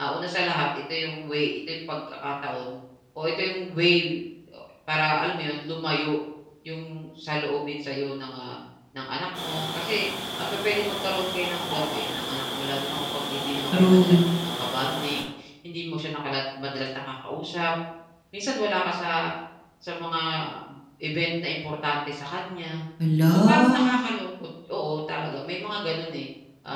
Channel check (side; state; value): both; identical; correlation 1.00